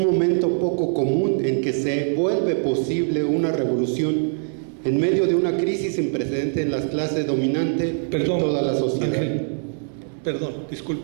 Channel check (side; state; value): left; silent; 64 dB below the other